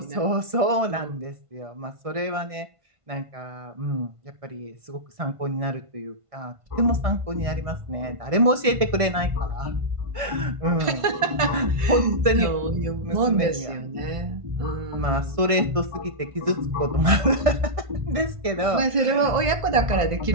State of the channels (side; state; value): left; late; 1.5 ms